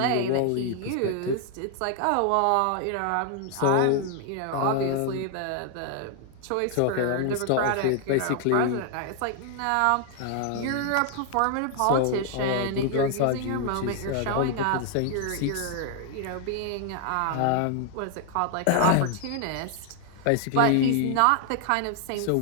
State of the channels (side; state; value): both; different; correlation 0.00